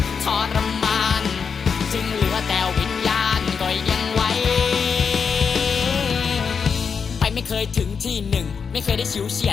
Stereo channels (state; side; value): quieter; right; 6.1 dB